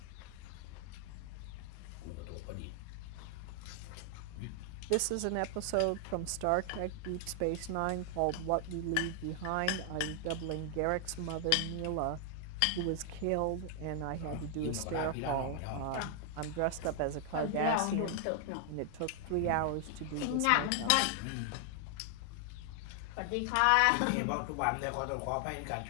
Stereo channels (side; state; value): both; different; correlation 0.00